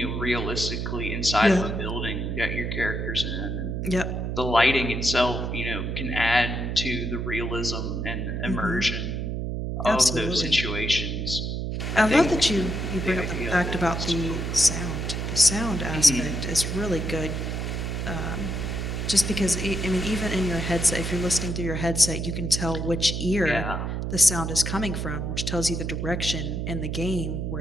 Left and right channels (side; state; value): right; noise; hum, 2 dB below the sound